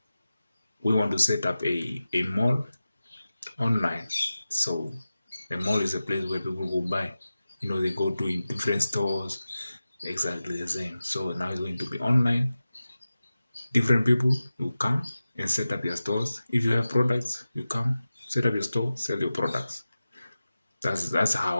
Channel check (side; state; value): both; inverted; correlation -0.95